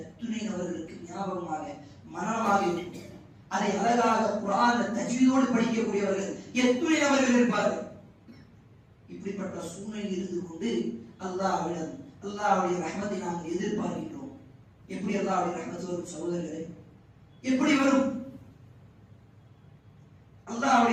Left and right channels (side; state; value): both; identical; correlation 1.00